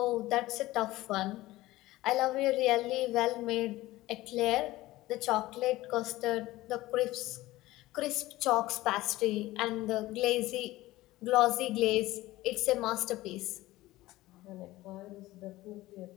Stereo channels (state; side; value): quieter; right; 17.6 dB